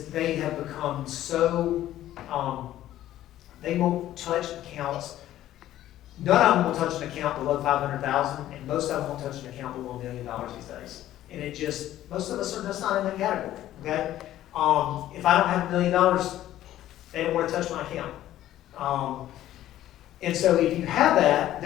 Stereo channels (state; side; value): quieter; right; 13.3 dB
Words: they have become so they won't touch accounts. None of them will touch an account below $500,000, and most of them won't touch an account below $1 million these days. And it just, most of us are just not in that category. Okay. If I don't have $1 million, they don't want to touch my account. And so if you have that,